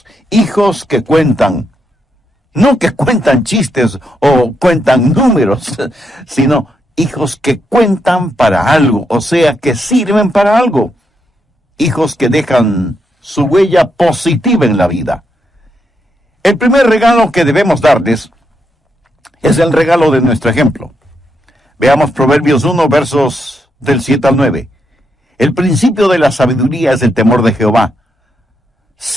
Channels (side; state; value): both; normal; correlation 0.81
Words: hijos que cuentan. No que cuentan chistes o cuentan números, sino hijos que cuentan para algo, o sea, que sirven para algo. Hijos que dejan su huella positiva en la vida. El primer regalo que debemos darles es el regalo de nuestro ejemplo. Veamos Proverbios 1, versos del 7 al 9. El principio de la sabiduría es el temor de Jehová.